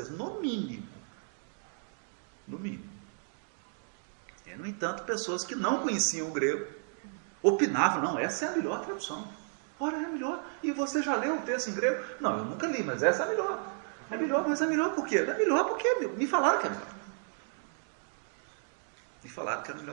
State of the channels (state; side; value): silent; left; 56 dB below the other